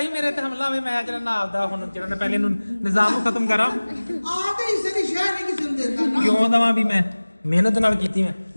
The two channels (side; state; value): both; inverted; correlation -1.00